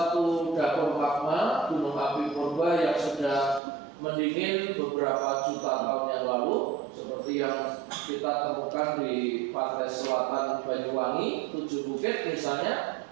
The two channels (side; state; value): left; drops out; at 3.6 s